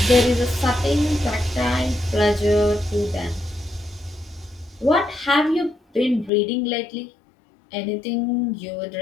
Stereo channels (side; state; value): right; drops out; at 6.3 s